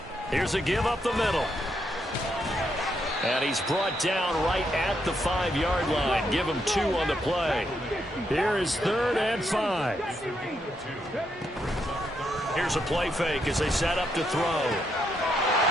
Here's a give up the middle. And he's brought down right at the 5-yard line. Give him 2 on the play. Here is 3rd and 5. Here's a play fake as they set up to throw.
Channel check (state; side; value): normal; both; correlation 0.78